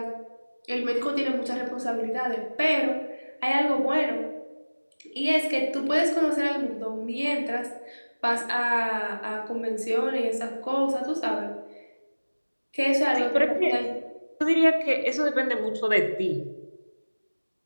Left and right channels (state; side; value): inverted; both; correlation -1.00